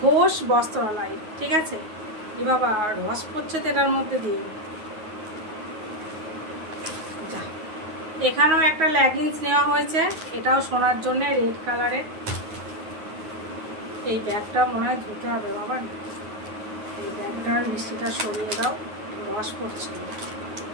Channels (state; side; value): late; left; 9.4 ms